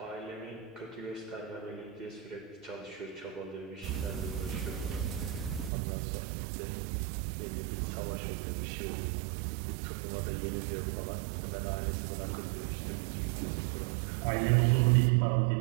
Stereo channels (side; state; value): left; drops out; at 5.7 s